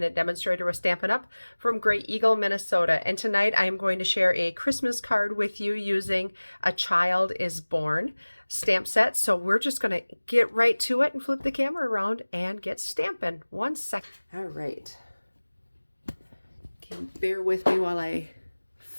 demonstrator with Stampin' Up! From Great Eagle, Minnesota. And tonight I am going to share a Christmas card with you using A Child is Born stamp set. So we're just going to get right to it and flip the camera around and get stamping. 1 second. All right. Okay, bear with me while I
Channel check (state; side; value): inverted; both; correlation -1.00